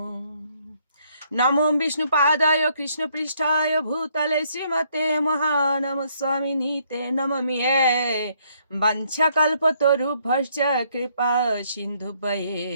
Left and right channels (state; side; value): inverted; both; correlation -0.69